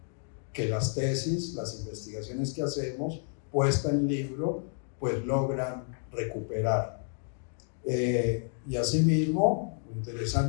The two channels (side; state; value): right; silent; 58 dB below the other